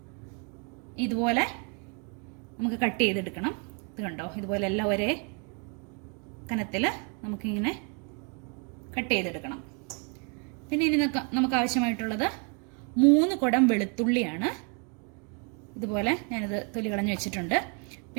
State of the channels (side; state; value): left; quieter; 37.0 dB